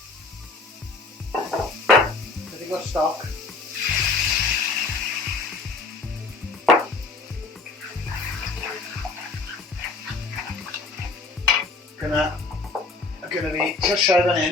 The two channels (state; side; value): quieter; right; 3.8 dB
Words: chydig o stoc, Gynna fi llysiau fan